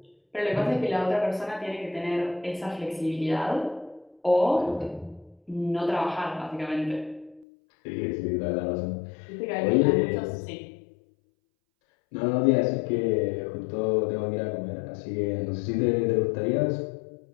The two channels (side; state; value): right; drops out; at 7.5 s